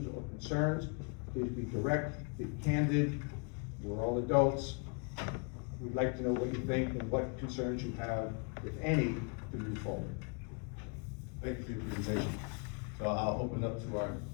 or concerns. Please be direct, be candid. We're all adults. We'd like to know what you think and what concerns you have, if any, to move forward. Thank you for your presentation. So I'll open up to our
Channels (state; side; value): quieter; right; 36.8 dB